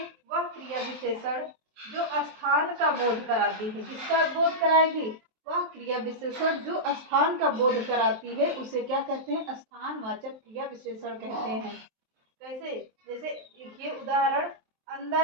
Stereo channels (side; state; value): left; late; 23 ms